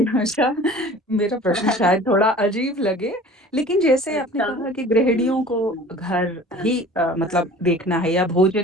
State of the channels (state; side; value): normal; both; correlation 0.44